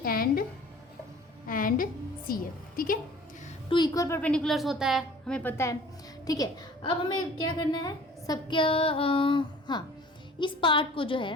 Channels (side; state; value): both; normal; correlation 0.48